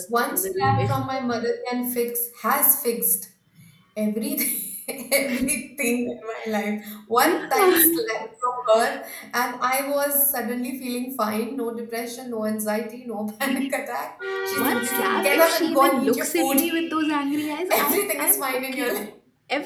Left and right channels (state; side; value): identical; both; correlation 1.00